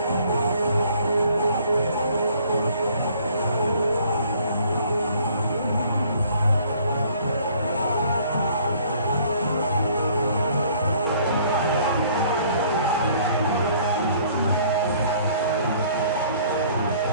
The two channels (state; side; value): inverted; both; correlation -0.58